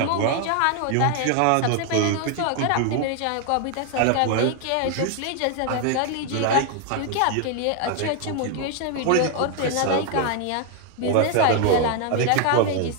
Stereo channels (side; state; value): both; different; correlation 0.01